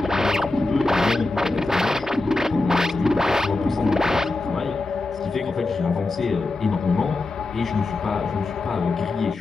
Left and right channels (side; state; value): right; quieter; 3.2 dB